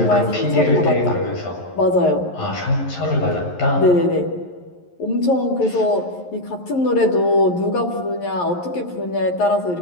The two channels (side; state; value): right; late; 11 ms